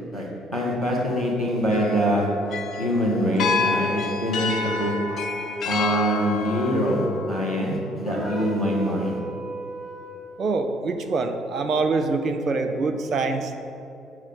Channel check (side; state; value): both; normal; correlation 0.60